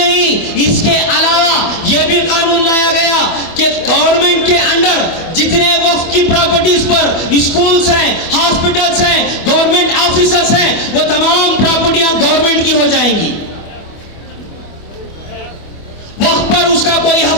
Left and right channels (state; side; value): late; right; 25 ms